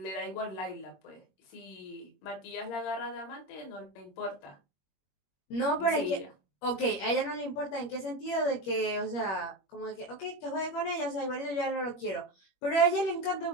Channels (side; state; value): right; late; 21 ms